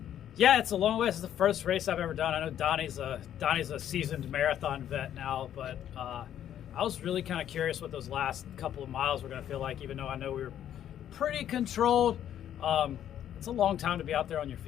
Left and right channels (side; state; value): right; quieter; 10.6 dB